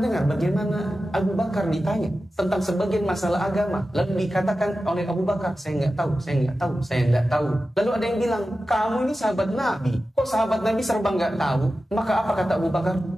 dengar bagaimana Abu Bakar ditanya tentang sebagian masalah agama, lalu dikatakan oleh Abu Bakar, saya nggak tahu. Lalu ada yang bilang, kamu ini sahabat Nabi, kok sahabat Nabi serba nggak tahu? Maka apa kata Abu Bakar?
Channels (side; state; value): both; normal; correlation 0.93